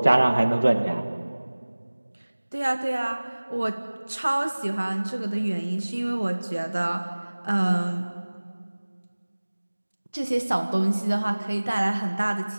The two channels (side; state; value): both; inverted; correlation -1.00